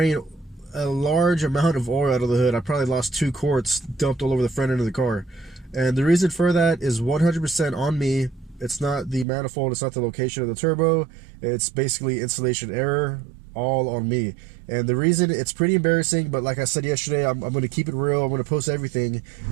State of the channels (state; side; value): drops out; left; at 9.2 s